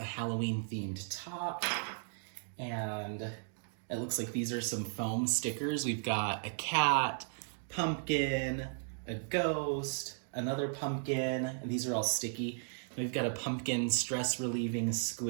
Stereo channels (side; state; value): left; silent; digital silence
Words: Halloween themed top. And it looks like these are some foam stickers. We've got a cat, pumpkin, a ghost, another pumpkin, and these are all sticky. We've got a pumpkin stress relieving